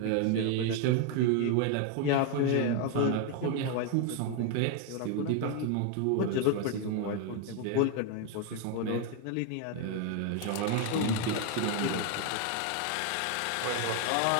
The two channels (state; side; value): different; both; correlation 0.01